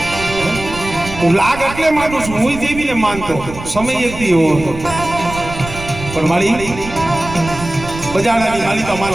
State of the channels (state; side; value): noise; right; rumble, 11 dB below the sound